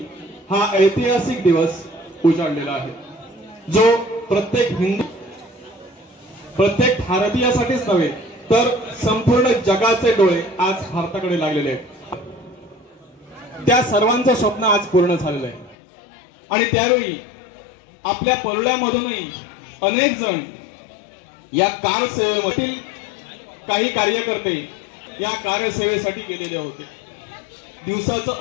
हा ऐतिहासिक दिवस उजाडलेला आहे, जो प्रत्येक भारतीयासाठीच नव्हे तर संपूर्ण जगाचे डोळे आज भारताकडे लागलेले आहेत. त्या सर्वांचं स्वप्न आज पूर्ण झालेलं आहे आणि त्यावेळी आपल्या परुळ्यामधूनही अनेक जण या कारसेवेमधील काही कार्यकर्ते या कार्यसेवेसाठी गेलेले होते. दिवसाचं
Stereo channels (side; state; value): right; drops out; at 15.8 s